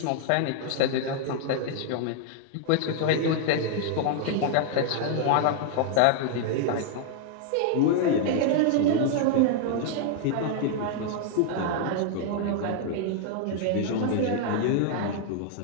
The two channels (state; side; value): different; both; correlation 0.00